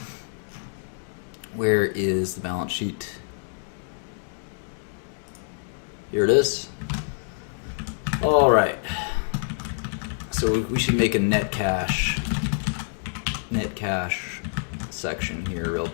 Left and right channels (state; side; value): silent; right; digital silence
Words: Where is the balance sheet? Here it is. Alright. So we should make a net cash section here real